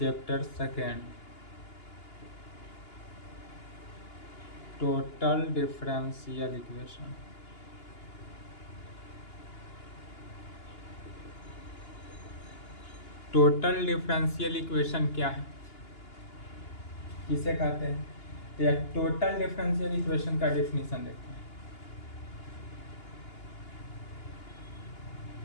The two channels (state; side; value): late; right; 2.8 ms